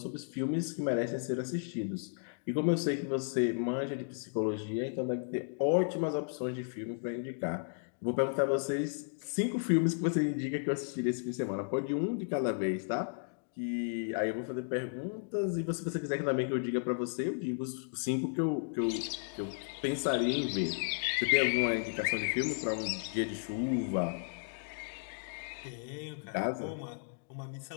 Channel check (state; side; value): silent; right; digital silence